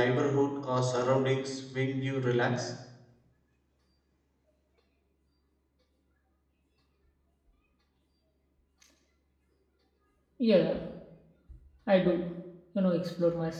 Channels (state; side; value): identical; both; correlation 1.00